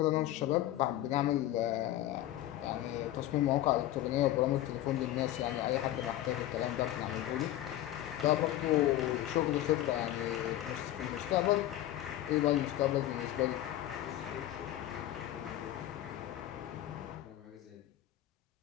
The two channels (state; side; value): quieter; right; 13.9 dB